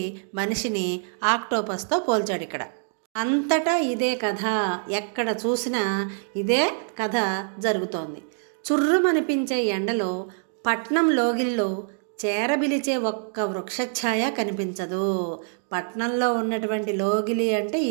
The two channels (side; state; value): left; silent; digital silence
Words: మనిషిని ఆక్టోపస్తో పోల్చాడు. ఇక్కడ అంతటా ఇదే కథ, ఎక్కడ చూసినా ఇదే కథ జరుగుతోంది. చుర్రుమనిపించే ఎండలో పట్నం లోగిల్లో చేరబిలిచే ఒక్క వృక్షఛాయ కనిపించదు. పట్నంలో ఉన్నటువంటి లోగిలి అంటే